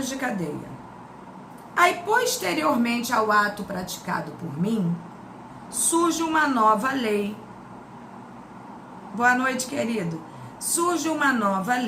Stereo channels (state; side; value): identical; both; correlation 1.00